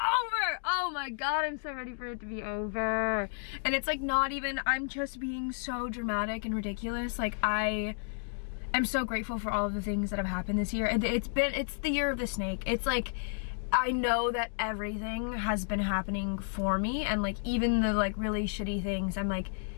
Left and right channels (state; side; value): silent; right; digital silence